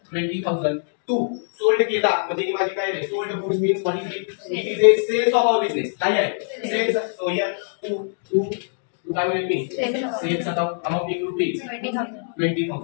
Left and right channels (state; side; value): silent; right; digital silence